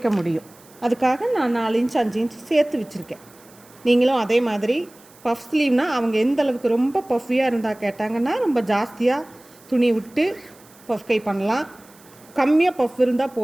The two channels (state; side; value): noise; right; hiss, 26 dB below the sound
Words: முடியும். அதுக்காக நான் 4 இன்ச் 5 இன்ச் சேர்த்து வச்சுருக்கேன். நீங்களும் அதே மாதிரி பஃப் ஸ்லீவ்னால் அவங்க எந்த அளவுக்கு ரொம்ப பஃபியாக இருந்தால் கேட்டாங்கன்னா ரொம்ப ஜாஸ்தியாக துணி விட்டு பஃப் கை பண்ணலாம். கம்மியாக பஃப் இருந்தால்